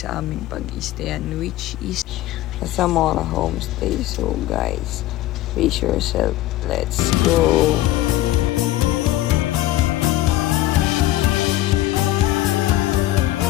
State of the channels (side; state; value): right; quieter; 15.4 dB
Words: aming pag-stayan, which is sa Zamora Homestay. So guys, brace yourself. Let's go!